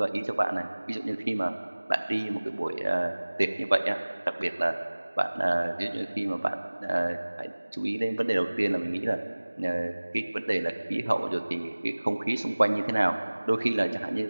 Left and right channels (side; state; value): both; inverted; correlation -1.00